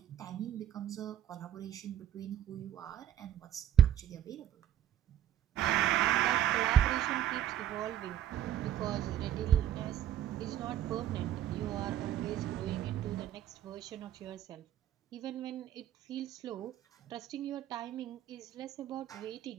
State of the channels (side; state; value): left; quieter; 11.0 dB